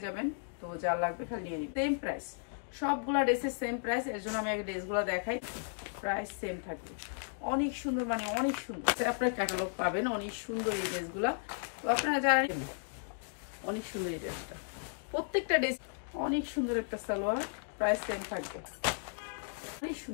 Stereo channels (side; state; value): right; silent; digital silence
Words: যাবেন, তো যা লাগবে খালি নিয়ে নিন। সেম প্রাইস, সবগুলা ড্রেসের সেম প্রাইস। এর জন্য আমি আগে ড্রেসগুলো দেখাই, প্রাইস সেম থাকবে। অনেক সুন্দর, মানে অনেক সুন্দর। আপনার ক্যাটালগ পাবেন, অনেক সুন্দর এই ড্রেসগুলা। তো আপনারা জানেন অনেক সুন্দর এই ড্রেসটা, প্রত্যেকটা ড্রেস অনেক সুন্দর একটা সালোয়ার, প্রাইস সেম থাকবে। অনেক